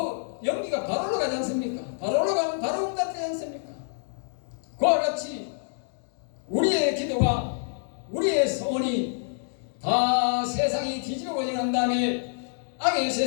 연기가 바로 올라가지 않습니까? 바로 올라가면 바로 응답되지 않습니까? 그와 같이 우리의 기도가, 우리의 소원이 다 세상이 뒤집어져 난 다음에, 악의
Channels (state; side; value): silent; right; digital silence